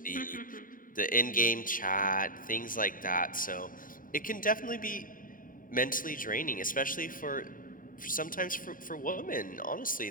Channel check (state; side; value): late; right; 0.40 ms